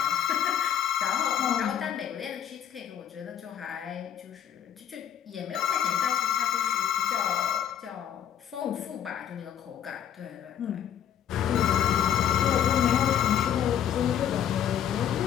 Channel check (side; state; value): right; quieter; 9.6 dB